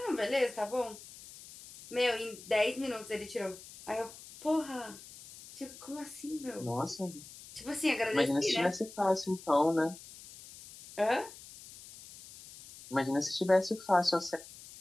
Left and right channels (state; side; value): noise; left; hiss, 17 dB below the sound